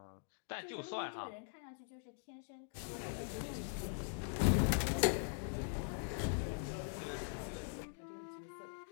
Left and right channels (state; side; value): silent; right; digital silence